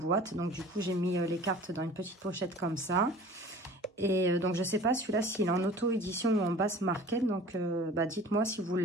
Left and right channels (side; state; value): both; normal; correlation 0.44